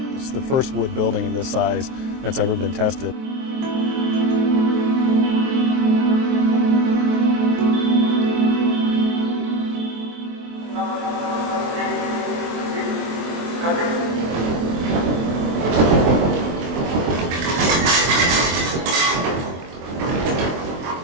It's the first wood building of this size that's ever been tested.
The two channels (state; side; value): late; left; 23 ms